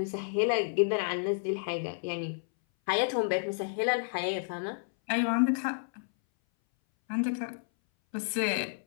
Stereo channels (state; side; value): silent; right; 57 dB below the other